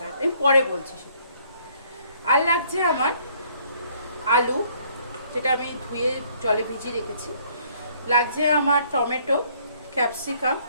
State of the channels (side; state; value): both; inverted; correlation -0.63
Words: আমি পরে বলছি সেটা। আর লাগছে আমার আলু, যেটা আমি ধুয়ে জলে ভিজিয়ে রেখেছি। লাগছে আমার টমেটো, ক্যাপসিকাম,